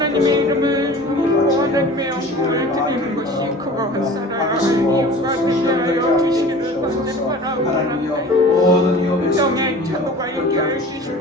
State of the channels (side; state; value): both; normal; correlation 0.41